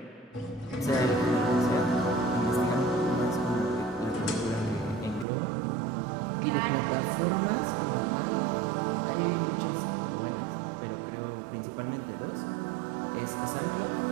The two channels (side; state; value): left; drops out; at 5.2 s